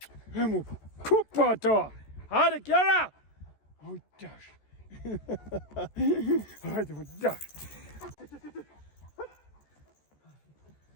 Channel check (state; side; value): late; right; 14 ms